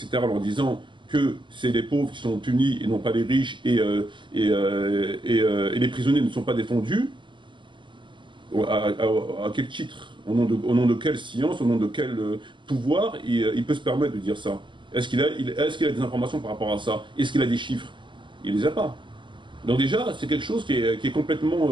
en leur disant que c'est les pauvres qui sont punis et non pas les riches, et les prisonniers ne sont pas défendus, à quel titre, au nom de quelle science, au nom de quel pouvoir il peut se permettre de dire ça? Est-ce qu'il a des informations par rapport à ça? Est-ce qu'il a des chiffres? Il ne les a pas. Donc déjà, c'est quelque chose qui est complètement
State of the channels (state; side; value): late; left; 0.23 ms